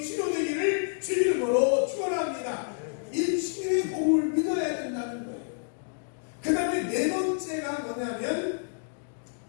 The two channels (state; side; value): silent; right; digital silence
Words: 치료되기를 주 이름으로 축원합니다. 이 치유의 복음을 믿어야 된다는 거예요. 그 다음에 네 번째가 뭐냐면